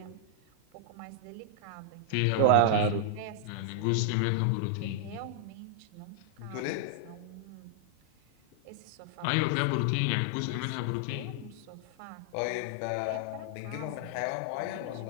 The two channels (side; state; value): both; different; correlation -0.01